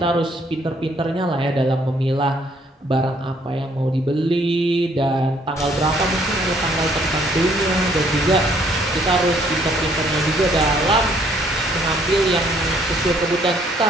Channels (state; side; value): normal; both; correlation 0.65